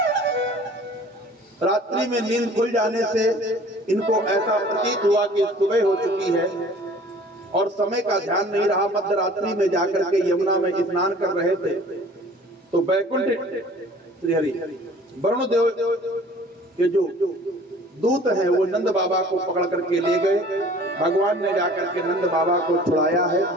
रात्रि में नींद खुल जाने से इनको ऐसा प्रतीत हुआ कि सुबह हो चुकी है और समय का ध्यान नहीं रहा। मध्य रात्रि में जाकर के यमुना में स्नान कर रहे थे तो वैकुंठ श्रीहरि वरुण देव के जो दूत हैं वो नंद बाबा को पकड़ करके ले गए। भगवान ने जाकर के नंद बाबा को छुड़ाया है।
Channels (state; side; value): normal; both; correlation 0.49